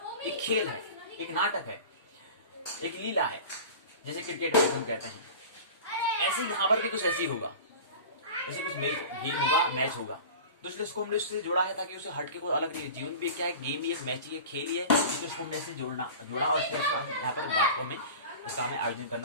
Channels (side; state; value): both; inverted; correlation -0.36